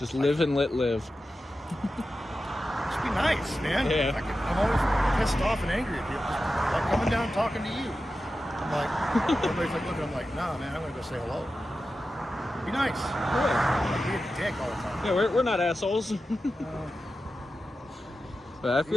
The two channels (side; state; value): both; normal; correlation 0.92